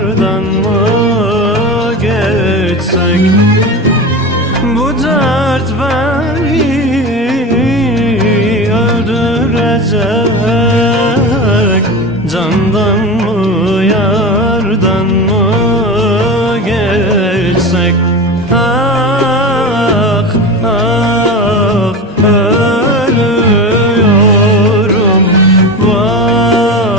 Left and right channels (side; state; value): both; normal; correlation 0.26